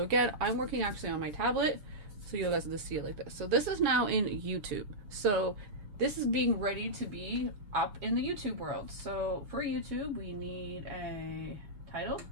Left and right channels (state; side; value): late; left; 7.2 ms